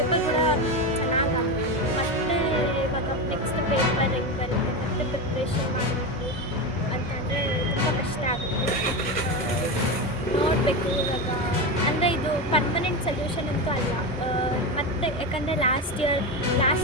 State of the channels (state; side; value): normal; both; correlation 0.18